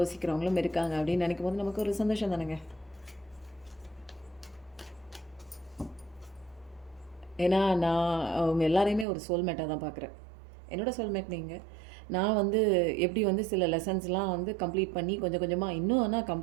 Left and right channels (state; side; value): drops out; left; at 9.1 s